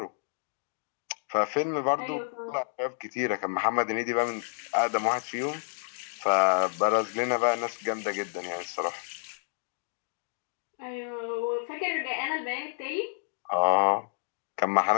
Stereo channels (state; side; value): silent; right; digital silence